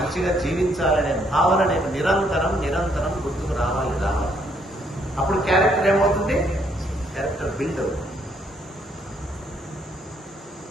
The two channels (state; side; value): normal; both; correlation 0.70